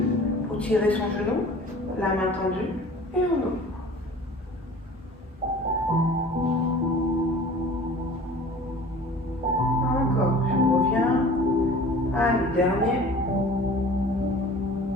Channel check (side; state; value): both; normal; correlation 0.44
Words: pour tirer son genou. La main tendue. Et on ouvre. Encore, je reviens. Allez, dernier.